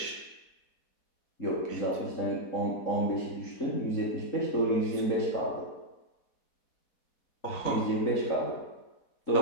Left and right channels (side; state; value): right; late; 4.1 ms